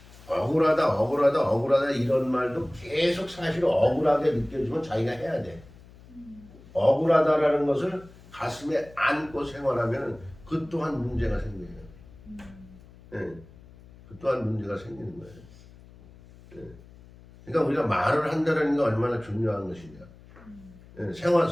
억울하다 이런 말도 계속 사실 억울하게 느껴지면 자기가 해야 돼. 억울하다라는 것을 가슴에 안고 생활하면 그 또한 문제가 생겨요. 네. 그 또한 문제가 생기는 거예요. 네. 그러니까 우리가 말을 한다는 게 얼마나 중요한 것이냐. 생활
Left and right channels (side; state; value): left; noise; hum, 22 dB below the sound